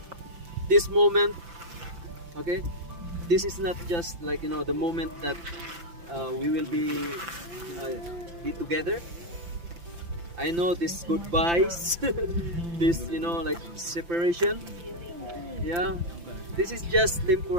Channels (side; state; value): left; late; 5.9 ms